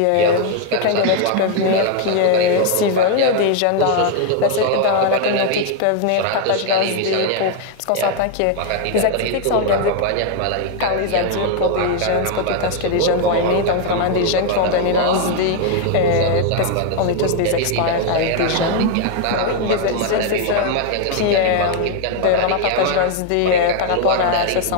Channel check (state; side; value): different; both; correlation 0.00